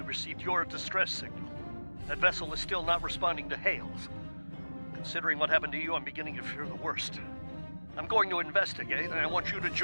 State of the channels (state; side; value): inverted; both; correlation -1.00